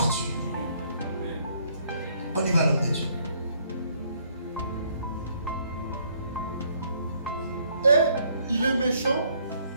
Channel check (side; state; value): both; inverted; correlation -0.67